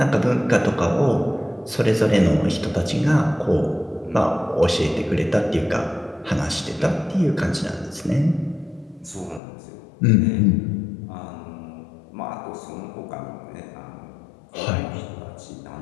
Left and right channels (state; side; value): drops out; right; at 9.4 s